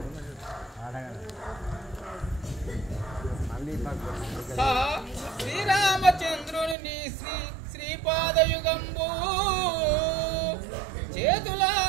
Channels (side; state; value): left; drops out; at 6.8 s